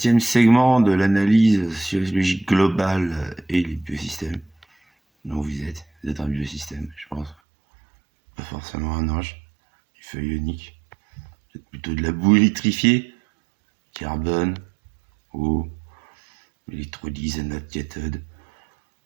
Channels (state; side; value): drops out; left; at 7.4 s